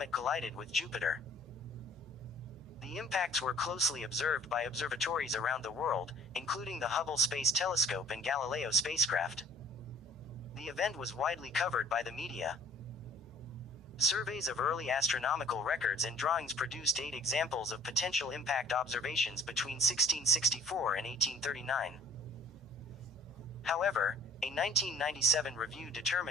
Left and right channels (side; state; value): both; normal; correlation 0.52